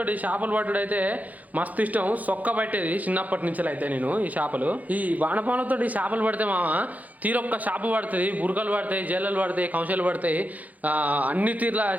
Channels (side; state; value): left; late; 0.078 ms